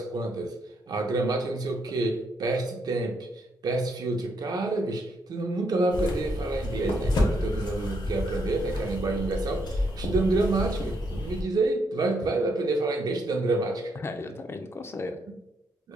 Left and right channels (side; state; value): both; normal; correlation 0.76